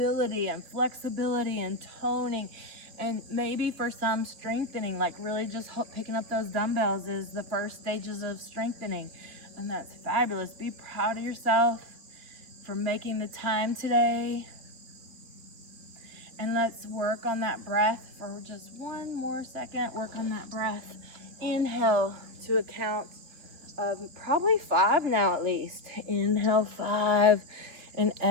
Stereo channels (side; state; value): left; late; 2.9 ms